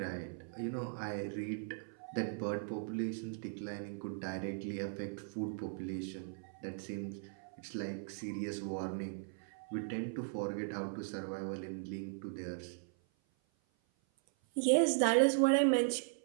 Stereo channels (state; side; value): silent; left; 52 dB below the other